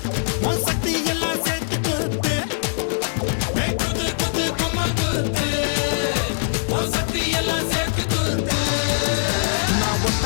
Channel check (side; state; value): right; silent; digital silence